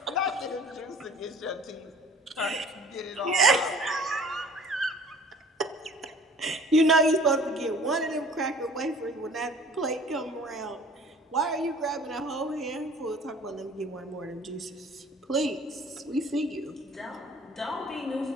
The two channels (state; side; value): normal; both; correlation 0.49